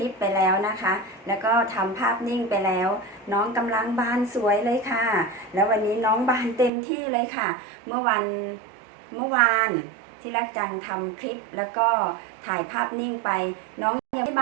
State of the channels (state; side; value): drops out; left; at 6.7 s